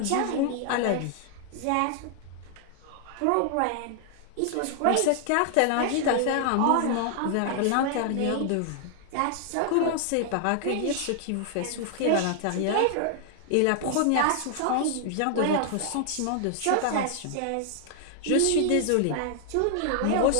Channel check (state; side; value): different; both; correlation 0.00